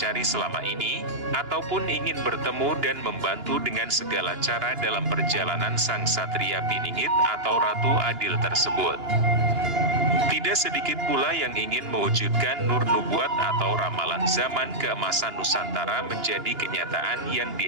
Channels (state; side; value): late; left; 2.9 ms